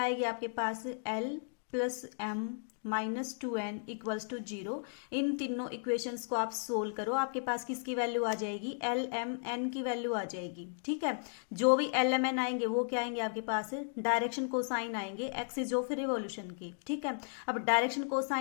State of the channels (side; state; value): right; silent; digital silence